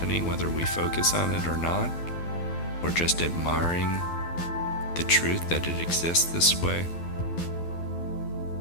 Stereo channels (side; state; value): right; late; 12 ms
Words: whether we focus on it or not. We're just admiring the truth that it exists this way.